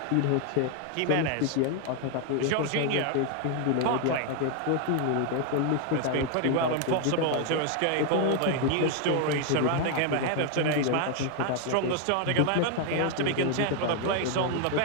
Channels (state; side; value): different; both; correlation 0.00